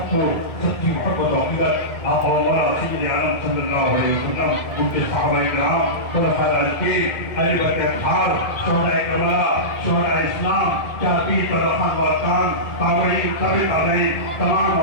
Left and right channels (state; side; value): late; right; 1.7 ms